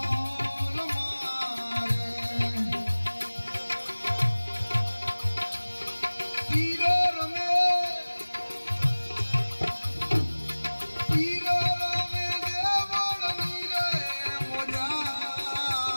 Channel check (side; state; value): both; inverted; correlation -1.00